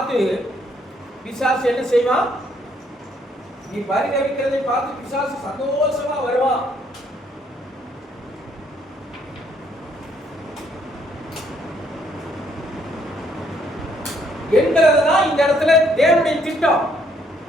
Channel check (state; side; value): normal; both; correlation 0.68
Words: பிசாசு என்ன செய்வான்? நீ பரிதவிக்கிறதை பார்த்து பிசாசு சந்தோஷமா வருவான். என்கிறதுதான் இந்த இடத்துல தேவனுடைய திட்டம்.